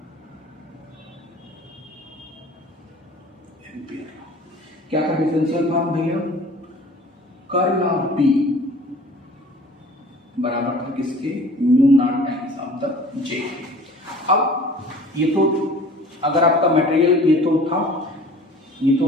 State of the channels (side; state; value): both; normal; correlation 0.46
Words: क्या था डिफरेंशियल फॉर्म भैया, कर्ल ऑफ बी बराबर था किसके, mu naught times of the J. अब ये तो अगर आपका मटेरियल ये तो था, ये तो